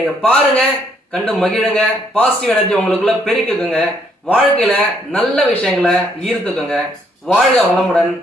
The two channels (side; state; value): both; normal; correlation 0.69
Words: பாருங்க, கண்டு மகிழுங்க, பாசிட்டிவ் எனர்ஜி உங்களுக்குள்ள பெருக்குங்க, வாழ்க்கையில நல்ல விஷயங்களை ஈர்த்துக்குங்க. வாழ்க வளமுடன்.